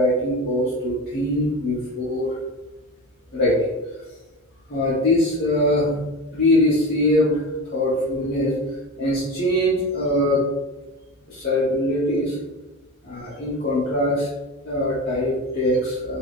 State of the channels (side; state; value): both; normal; correlation 0.27